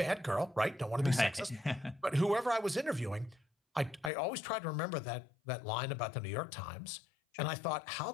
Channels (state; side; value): drops out; right; at 4.1 s